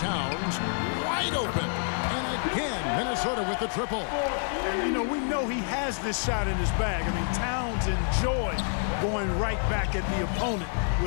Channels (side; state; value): right; silent; 58 dB below the other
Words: wide open. And again, Minnesota with the triple. And, you know, we know he has this shot in his bag. I mean, Towns enjoys going right back at the opponent